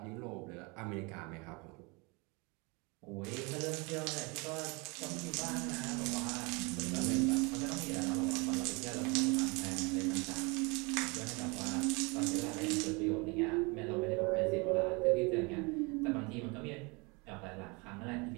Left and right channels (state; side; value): quieter; left; 28.5 dB